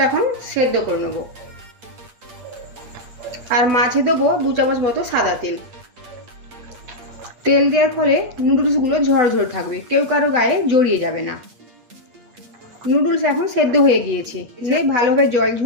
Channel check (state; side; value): late; left; 8.5 ms